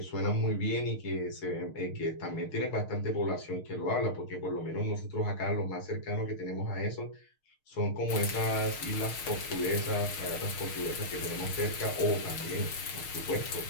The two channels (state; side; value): late; right; 6.5 ms